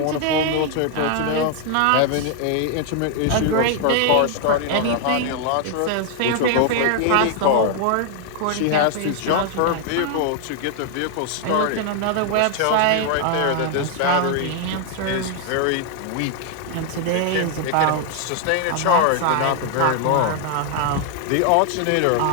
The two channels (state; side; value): different; both; correlation 0.00